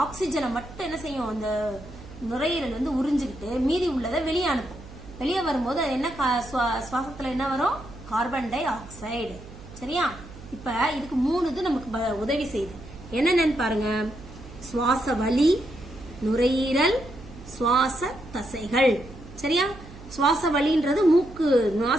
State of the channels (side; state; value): right; noise; hum, 17 dB below the sound